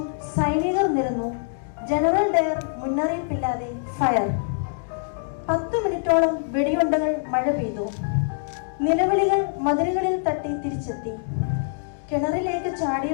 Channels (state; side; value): silent; right; digital silence